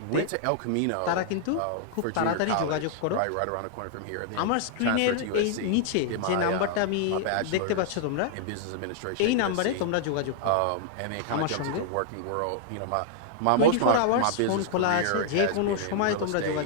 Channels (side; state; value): both; different; correlation -0.01